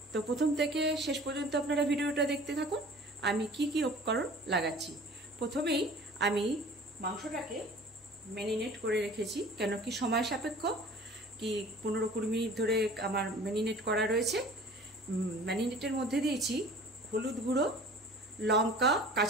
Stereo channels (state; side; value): normal; both; correlation 0.45